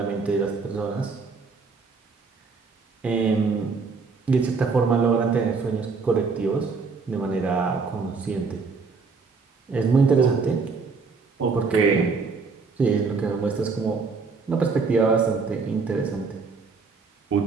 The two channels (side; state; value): left; quieter; 4.7 dB